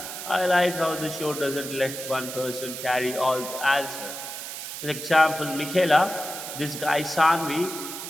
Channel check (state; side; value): noise; right; hiss, 8 dB below the sound